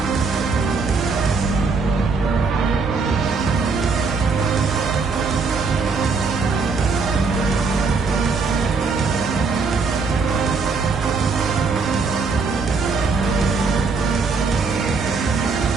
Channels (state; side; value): quieter; left; 4.6 dB